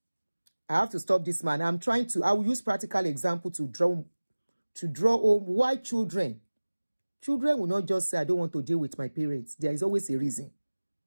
I have to stop this man. I will use practical example to draw home why children will not just say, I don't want to deal with my parents. There is always a reason.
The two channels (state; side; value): inverted; both; correlation -1.00